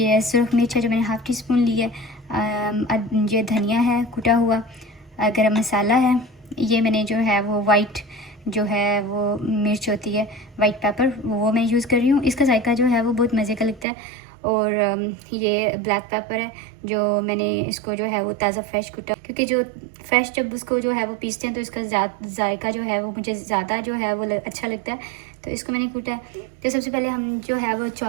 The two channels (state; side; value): drops out; left; at 13.9 s